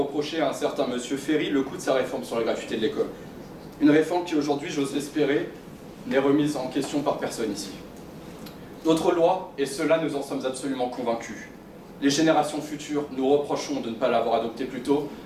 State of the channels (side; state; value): both; identical; correlation 1.00